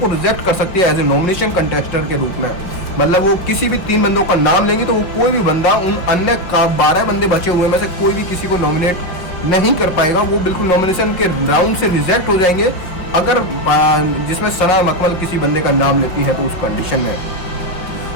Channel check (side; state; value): right; late; 5.3 ms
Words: रिजेक्ट कर सकती है एज ए नॉमिनेशन कंटेस्टेंट के रूप में। मतलब वो किसी भी 3 बंदों का नाम लेंगे तो वो कोई भी बंदा उन अन्य 12 बंदे बचे हुए में से कोई भी किसी को नॉमिनेट नहीं कर पाएगा, वो बिल्कुल नॉमिनेशन के राउंड से रिजेक्ट हो जाएंगे, अगर जिसमें सना मकमल किसी बंदे का नाम लेती है तो उस कंडीशन में।